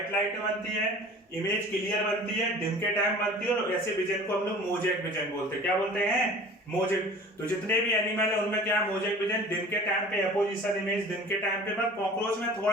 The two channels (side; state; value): both; normal; correlation 0.44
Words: लाइटें बनती है, इमेज क्लियर बनती है, दिन के टाइम बनती है, और ऐसे विजन को हम लोग मोजेक विजन बोलते हैं। क्या बोलते हैं? मोजेक। तो जितने भी एनिमल है उनमें क्या? मोजेक विजन, दिन के टाइम पे एपोजिशन इमेज, दिन के टाइम पे। पर कॉकरोच में